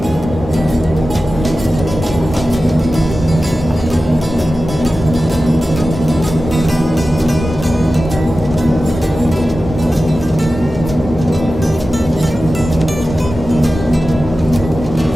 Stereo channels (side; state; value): both; normal; correlation 0.94